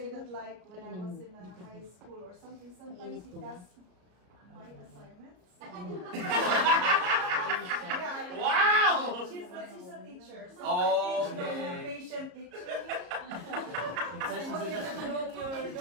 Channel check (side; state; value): left; late; 33 ms